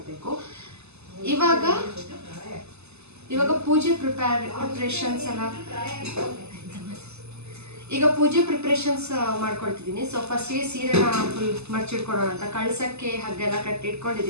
ಇವಾಗ ಪೂಜೆ ಪ್ರಿಪ್ರೇಷನ್ಸ್ ಎಲ್ಲ ಈಗ ಪೂಜೆ ಪ್ರಿಪ್ರೇಷನ್ಸ್ ಮಾಡ್ಕೊಳ್ತಿದ್ದೀನಿ. ಸೊ ಫಸ್ಟಿಗೆ ಸೀರೆನ ಫುಲ್ ಮರ್ಚಿಟ್ಕೊಡೋಣ ಅಂತ ಕಳ್ಸಕ್ಕೆ ಹಾಗೆಲ್ಲ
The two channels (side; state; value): left; late; 0.80 ms